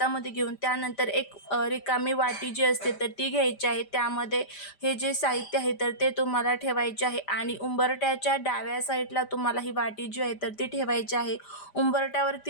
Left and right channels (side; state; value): right; late; 5.0 ms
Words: घेऊन त्यानंतर एक रिकामी वाटी जी असते तर ती घ्यायची आहे. त्यामध्ये हे जे साहित्य आहे तर ते तुम्हाला ठेवायचे आहे आणि उंबरठ्याच्या डाव्या साईडला तुम्हाला ही वाटी जी आहे तर ती ठेवायची आहे.